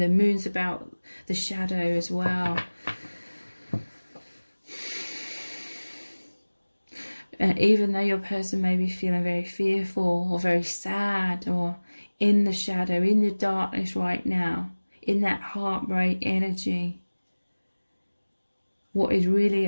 moon's about the shadow as well. And even though your person may be feeling very fearful or very sad or in the shadow, in the darkness right now, in that heartbreak energy, what is really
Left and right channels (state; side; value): inverted; both; correlation -1.00